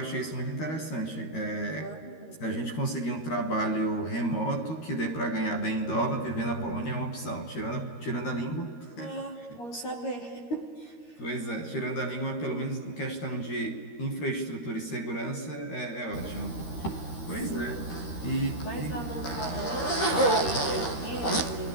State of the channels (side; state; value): right; late; 13 ms